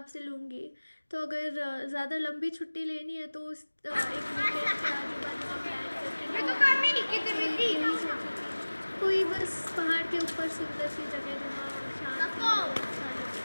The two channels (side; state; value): both; inverted; correlation -1.00